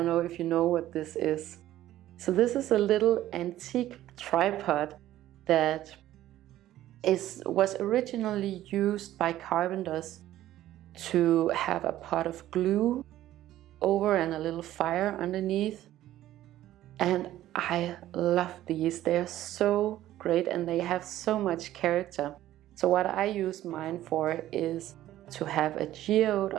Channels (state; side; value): quieter; left; 13.8 dB